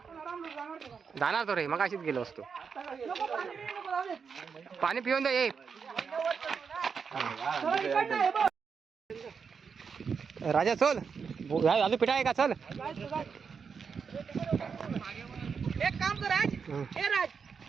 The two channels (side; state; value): left; quieter; 6.0 dB